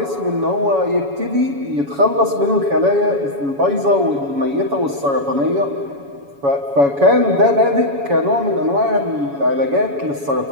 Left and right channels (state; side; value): late; left; 7.1 ms